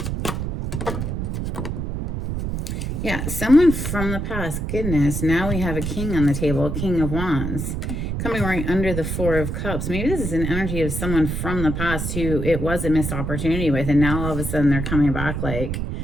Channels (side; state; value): right; noise; rumble, 3 dB below the sound